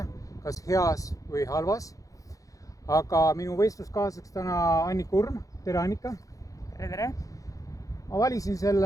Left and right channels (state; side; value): late; right; 0.16 ms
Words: kas heas või halvas. Aga minu võistluskaaslaseks täna Annika Urm. Tere Annika! Tere! Ma valisin